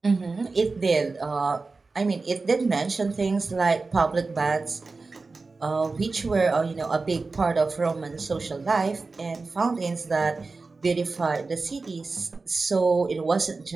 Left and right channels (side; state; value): left; quieter; 3.9 dB